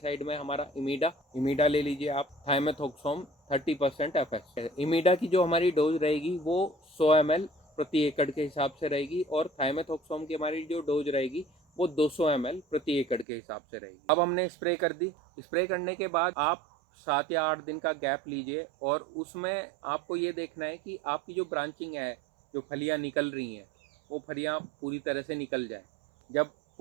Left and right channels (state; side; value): drops out; left; at 13.2 s